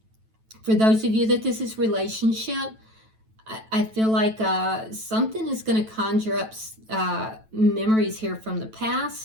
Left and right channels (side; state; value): left; late; 9.1 ms